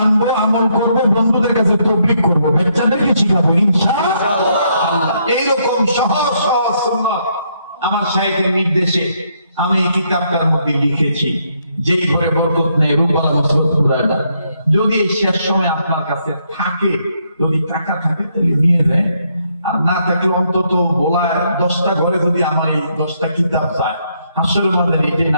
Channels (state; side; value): inverted; both; correlation -0.74